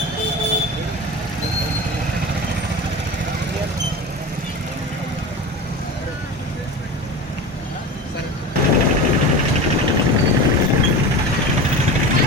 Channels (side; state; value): both; normal; correlation 0.29